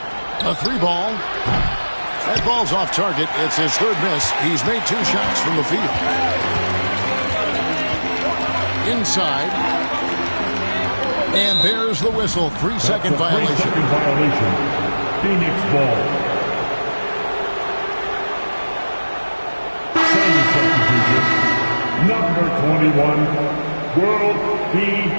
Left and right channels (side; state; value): both; inverted; correlation -1.00